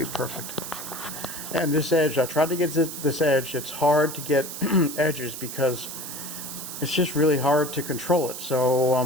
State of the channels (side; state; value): right; noise; hiss, 8 dB below the sound